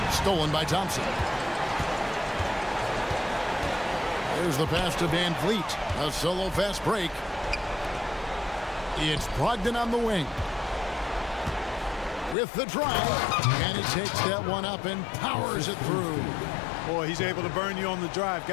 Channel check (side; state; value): right; drops out; at 12.4 s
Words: Stolen by Thompson. There's the pass to VanVleet. A solo fast break. It's Brogdon on the wing. With the drive. And he takes that one up and powers it through. Boy, he's able to burn you on the drive.